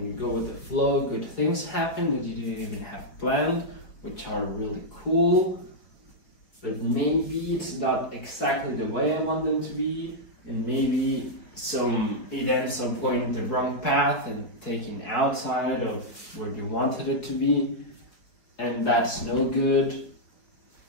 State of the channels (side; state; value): right; late; 4.9 ms